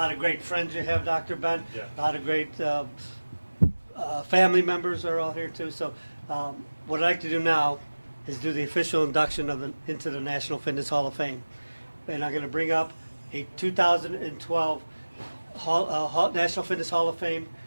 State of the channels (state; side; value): inverted; both; correlation -1.00